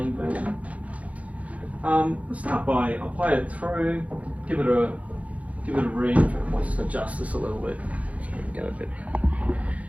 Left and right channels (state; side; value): late; left; 0.067 ms